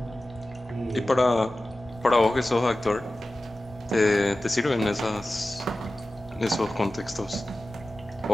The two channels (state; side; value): normal; both; correlation 0.95